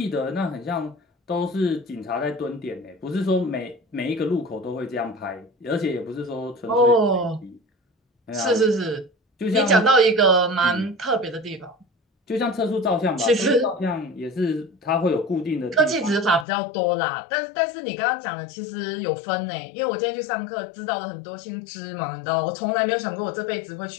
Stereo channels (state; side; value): drops out; right; at 16.4 s